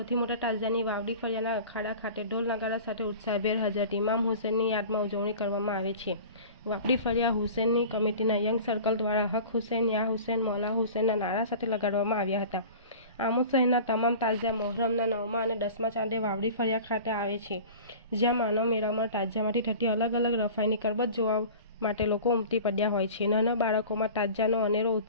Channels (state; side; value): inverted; both; correlation -0.39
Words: મોટા તાજિયાની વાવડી ફળિયાના અખાડા ખાતે ઢોલ નગારા સાથે ઉત્સાહભેર હજરત ઇમામ હુસેનની યાદમાં ઉજવણી કરવામાં આવે છે। વાવડી ફળિયા હુસેનની કમિટીના યંગ સર્કલ દ્વારા હક હુસેન યા હુસેન મૌલા હુસેનના નારા સાથે લગાડવામાં આવ્યા હતા। આમોદ શહેરના તમામ તાજિયા મોહરમના 9મા અને 10મા ચાંદે વાવડી ફળિયા ખાતે આવે છે, જ્યાં માનવ મેળામાં તાજિયામાંથી થતી અલગ અલગ રફાઈની કરબત જોવા માટે લોકો ઉમટી પડ્યા હોય છે। નાના બાળકોમાં તાજિયાનો અનેરો